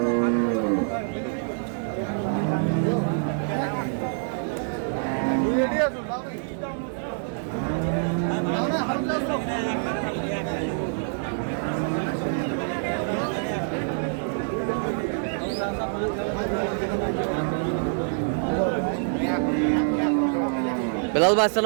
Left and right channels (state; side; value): silent; left; 61 dB below the other